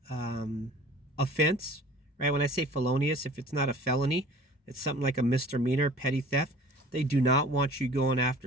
offense, right? When I say felonious, if it's not a felony, it's something like a misdemeanor, petty theft. They do not want you going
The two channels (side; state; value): both; normal; correlation 0.46